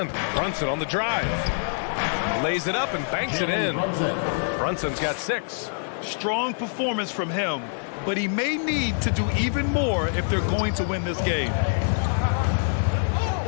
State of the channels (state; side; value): silent; right; digital silence